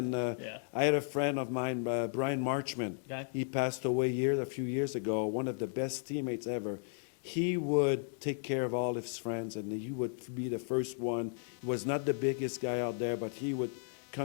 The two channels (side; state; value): right; silent; digital silence